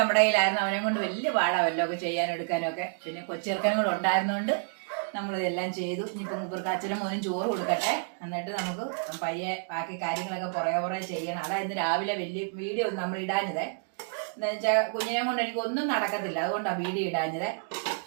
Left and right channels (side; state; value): left; silent; digital silence